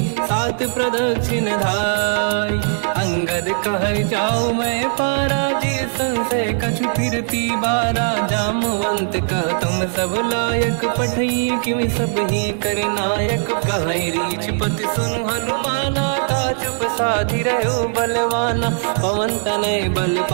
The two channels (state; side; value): silent; left; digital silence